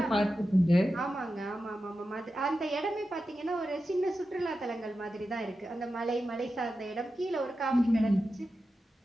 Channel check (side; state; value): both; normal; correlation 0.91